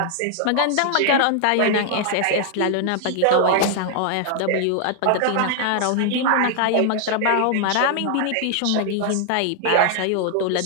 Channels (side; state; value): both; different; correlation 0.00